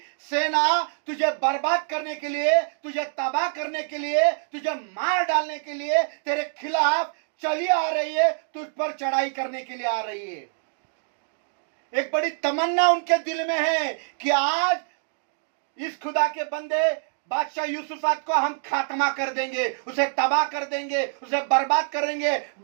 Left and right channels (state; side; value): silent; left; digital silence